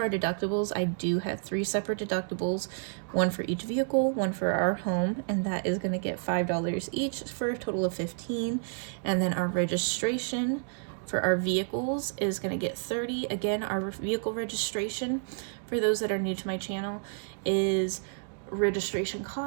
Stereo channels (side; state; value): left; silent; digital silence